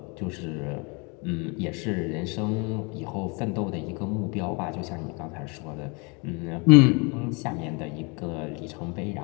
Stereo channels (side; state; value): right; quieter; 31.3 dB